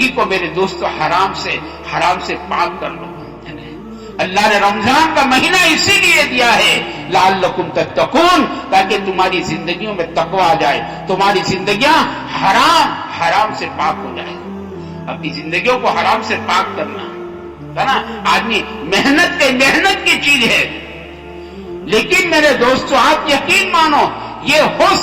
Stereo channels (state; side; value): identical; both; correlation 1.00